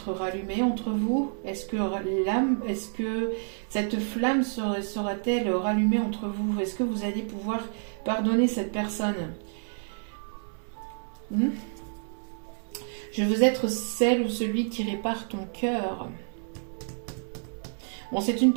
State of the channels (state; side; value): silent; left; 59 dB below the other